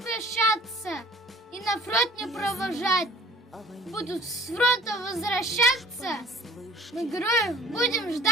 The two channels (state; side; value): normal; both; correlation 0.50